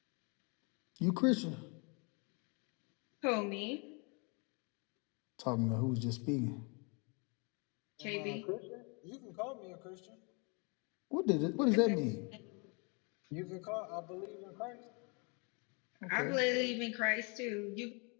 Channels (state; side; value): quieter; right; 33.5 dB